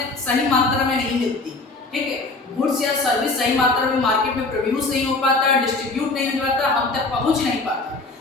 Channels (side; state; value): right; quieter; 3.4 dB